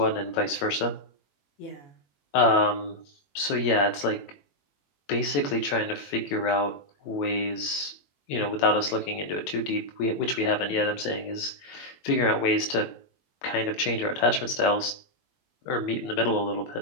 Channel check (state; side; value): late; right; 21 ms